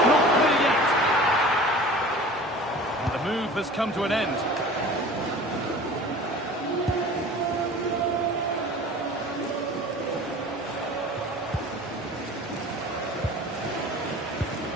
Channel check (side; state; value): both; normal; correlation 0.42